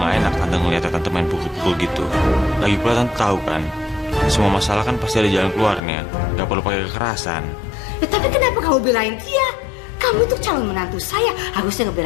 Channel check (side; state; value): right; drops out; at 5.8 s